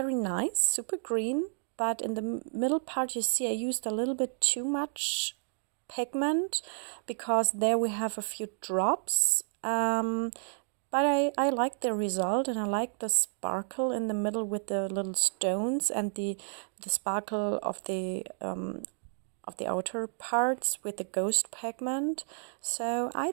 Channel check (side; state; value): left; silent; digital silence